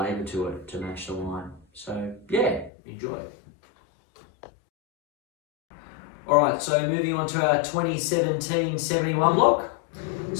to it to match the wine. So enjoy it. All right, so moving on to our 2017 71 block.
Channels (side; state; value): right; drops out; at 2.7 s